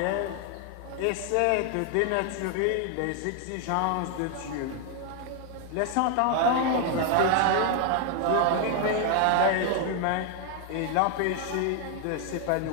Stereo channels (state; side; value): different; both; correlation 0.00